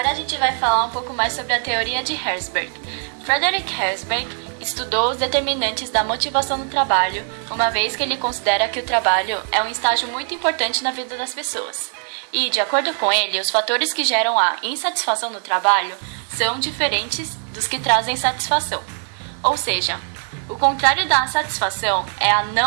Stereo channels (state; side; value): silent; left; 56 dB below the other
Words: a gente vai falar um pouco mais sobre a teoria de Herzberg. Frederick Herzberg estudou os determinantes da motivação no trabalho, uma vez que ele considera que o trabalho é um estágio muito importante na vida das pessoas. E, de acordo com ele, os fatores que geram a insatisfação no trabalho são diferentes dos que trazem satisfação. Ou seja, o contrário da satisfação é a